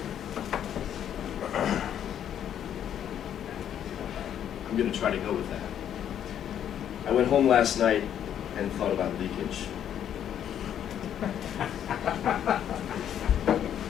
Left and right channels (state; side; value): quieter; right; 9.8 dB